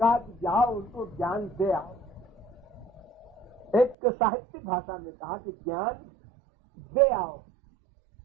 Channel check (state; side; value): drops out; left; at 4.0 s